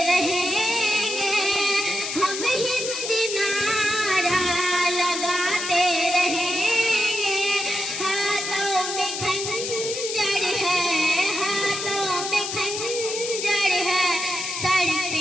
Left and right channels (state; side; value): noise; left; hiss, 4 dB below the sound